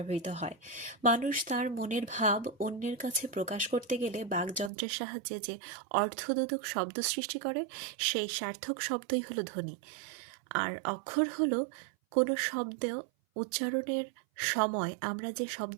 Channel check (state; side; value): drops out; left; at 4.7 s